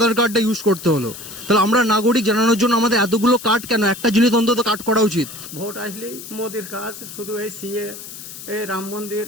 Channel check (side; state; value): left; noise; hiss, 13 dB below the sound